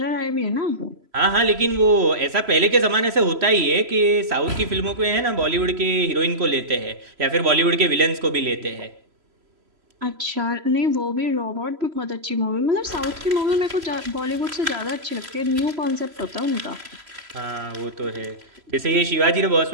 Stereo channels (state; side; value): late; left; 3.0 ms